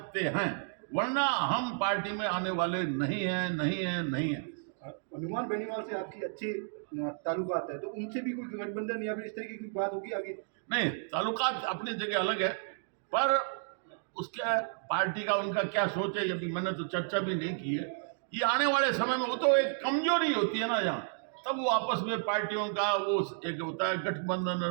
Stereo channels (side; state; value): left; silent; digital silence